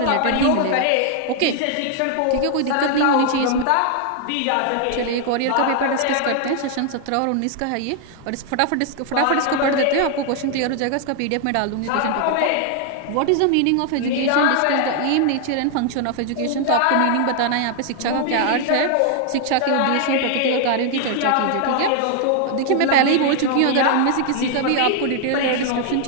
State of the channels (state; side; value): different; both; correlation 0.00